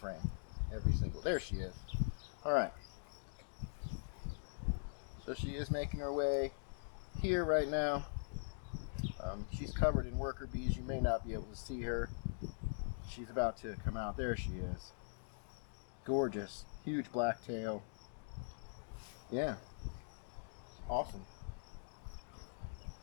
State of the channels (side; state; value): right; silent; digital silence